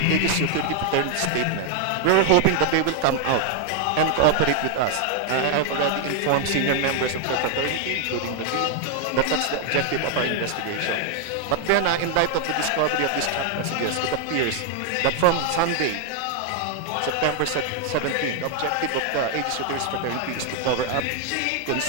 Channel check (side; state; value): both; different; correlation 0.00